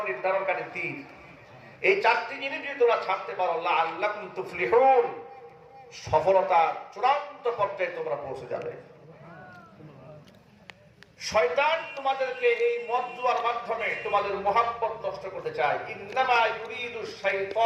নির্ধারণকারী তীর। এই চারটি জিনিস যদি তোমরা ছাড়তে পারো, লাআল্লাকুম তুফলিহুন, সফলতার চূড়ান্ত পর্যায়ে তোমরা পৌঁছে যাবে। শয়তান তোমাদেরকে এই মদ জুয়ার মাধ্যমে তোমাদের মুহাব্বত নষ্ট করতে চায়। ইন্নামা ইউরিদু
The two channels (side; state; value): both; identical; correlation 1.00